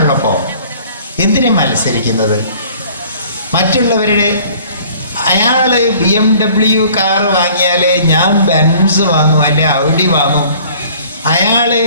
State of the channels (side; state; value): both; inverted; correlation -0.52